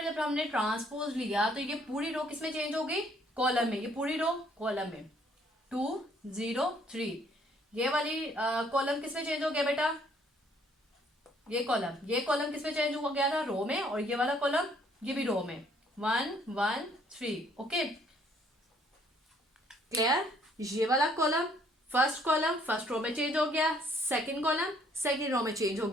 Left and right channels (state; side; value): normal; both; correlation 0.64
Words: जब हमने ट्रांसपोज लिया तो ये पूरी रो किसमें चेंज हो गई, कॉलम में, ये पूरी रो कॉलम में 2 0 3। ये वाली कॉलम किसमें चेंज हो गया बेटा, ये कॉलम किसमें चेंज हो गया था, रो में, और ये वाला कॉलम ये भी रो में, 1 1 3। Okay, clear. ये वाला कॉलम फर्स्ट रो में चेंज हो गया, सेकंड कॉलम सेकंड रो में चेंज हो